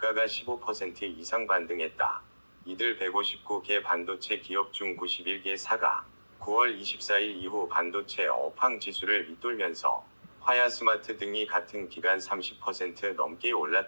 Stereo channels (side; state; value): both; inverted; correlation -1.00